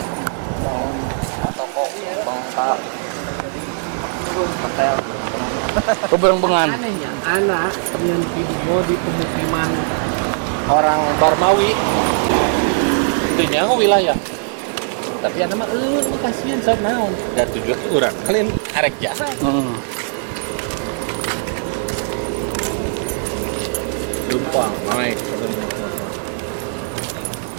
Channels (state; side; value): silent; left; 60 dB below the other